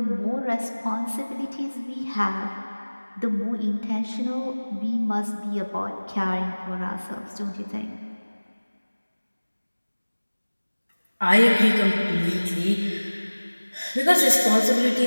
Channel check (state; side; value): inverted; both; correlation -1.00